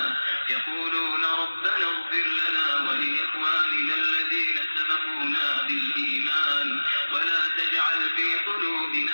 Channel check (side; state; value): both; inverted; correlation -1.00